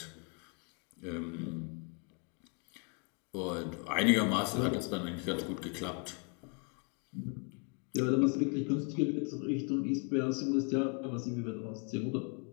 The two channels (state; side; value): quieter; right; 37.0 dB